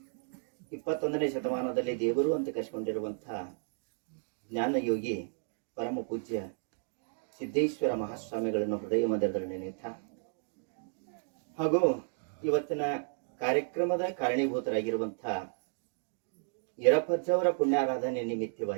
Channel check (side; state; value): left; silent; digital silence